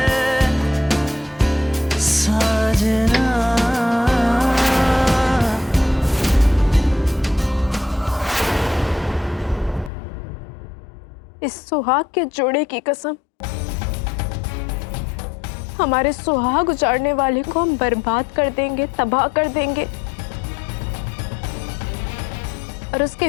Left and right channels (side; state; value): right; drops out; at 9.9 s